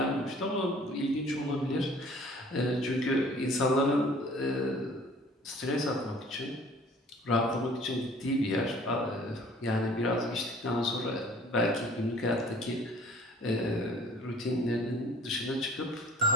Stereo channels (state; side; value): normal; both; correlation 0.51